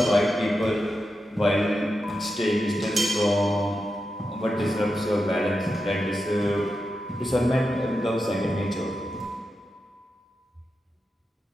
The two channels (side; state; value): both; normal; correlation 0.89